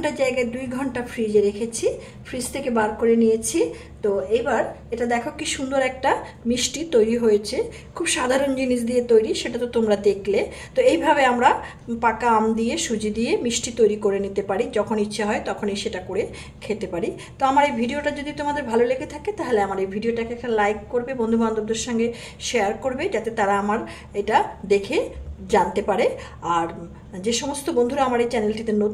জায়গায় 2 ঘন্টা ফ্রিজে রেখেছি। ফ্রিজ থেকে বার করে নিয়েছি। তো এবার এটা দেখো কি সুন্দর একটা মিষ্টি তৈরি হয়েছে। খুব সাধারণ জিনিস দিয়ে তৈরি, সেটা তো তোমরা দেখলে। তো এইভাবে আমরা পাকা আম দিয়ে সুজি দিয়ে মিষ্টি তৈরি করে নিতে পারি। যখন ইচ্ছে হয় তখনই সেটা করে খেতে পারি। তো আমার এই ভিডিওটা যদি তোমাদের ভালো লেগে থাকে তাহলে আমার এই ভিডিওটাকে একটা লাইক করবে, বন্ধু বান্ধবদের সঙ্গে শেয়ার করবে, যাতে তারা আমার এটা দেখে জানতে পারে। আর যে সমস্ত বন্ধুরা আমার এই চ্যানেলটিতে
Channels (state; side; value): identical; both; correlation 1.00